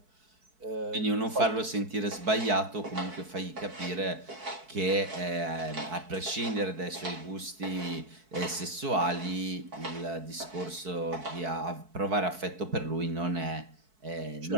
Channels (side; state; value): left; late; 4.6 ms